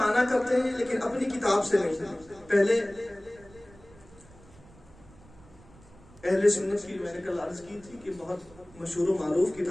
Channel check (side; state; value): right; noise; rumble, 24 dB below the sound